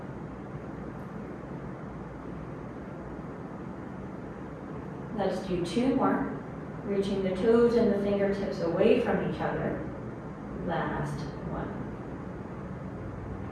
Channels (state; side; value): identical; both; correlation 1.00